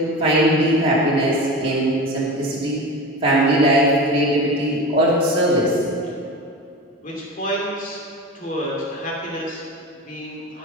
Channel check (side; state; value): both; normal; correlation 0.29